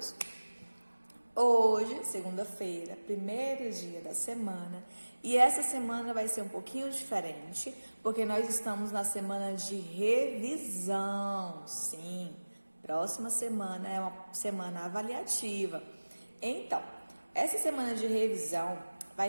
Hoje, segunda-feira, primeiro dia da semana, e essa semana vai ser um pouquinho diferente, porque nós estamos na semana de revisão. Sim, próxima semana é uma semana avaliativa. Então, essa semana de revisão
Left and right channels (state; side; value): inverted; both; correlation -1.00